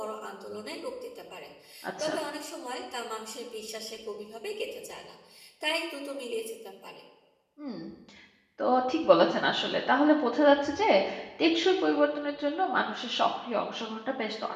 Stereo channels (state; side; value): identical; both; correlation 1.00